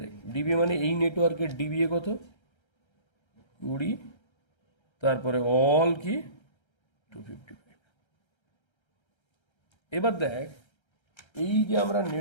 দেখ, ডিবিএ মানে এই নেটওয়ার্কের ডিবিএ কত? 20, তারপরে অল কি 255। এবার দেখ, এই যে আমরা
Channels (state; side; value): late; right; 1.3 ms